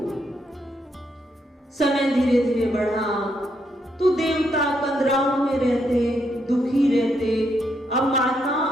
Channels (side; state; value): both; normal; correlation 0.77